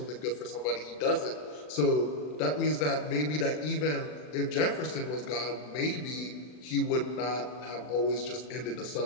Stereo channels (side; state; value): right; late; 40 ms